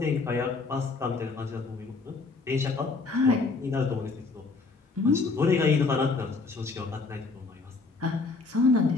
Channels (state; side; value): quieter; right; 4.0 dB